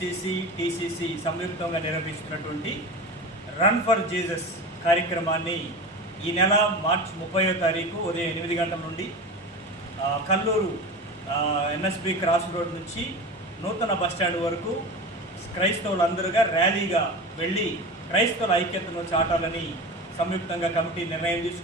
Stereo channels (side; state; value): both; normal; correlation 0.29